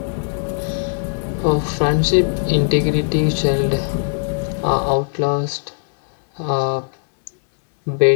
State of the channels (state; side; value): silent; right; digital silence